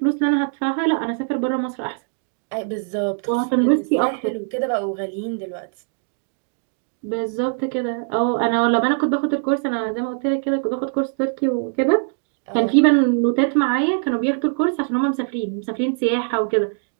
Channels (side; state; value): left; silent; 64 dB below the other